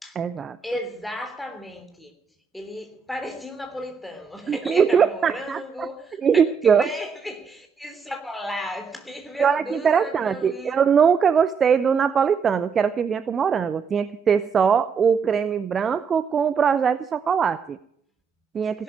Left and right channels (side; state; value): left; quieter; 6.3 dB